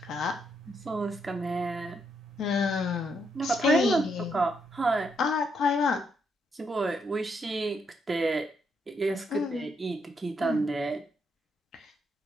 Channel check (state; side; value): normal; both; correlation 0.77